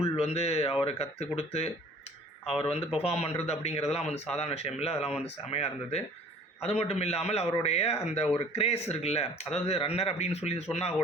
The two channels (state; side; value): normal; both; correlation 0.51